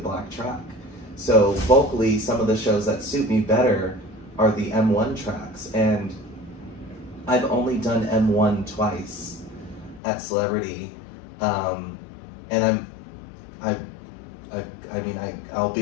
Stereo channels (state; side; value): drops out; right; at 10.0 s